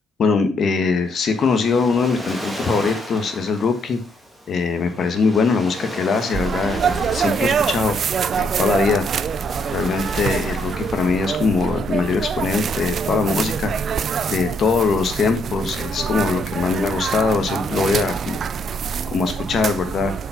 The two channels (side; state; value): both; normal; correlation 0.72